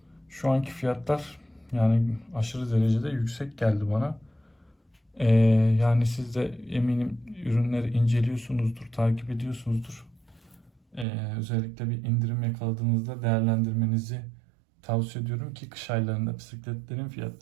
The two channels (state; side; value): drops out; left; at 11.1 s